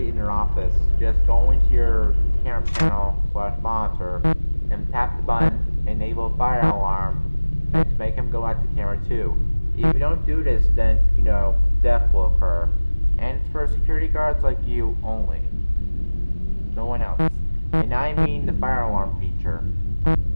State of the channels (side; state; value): both; inverted; correlation -1.00